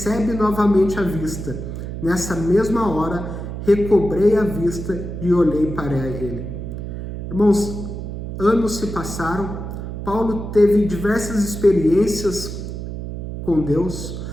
novamente a vista. Nessa mesma hora, recobrei a vista e olhei para ele. Irmãos, anos se passaram, Paulo teve diversas experiências com Deus,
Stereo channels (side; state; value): right; noise; hum, 7 dB below the sound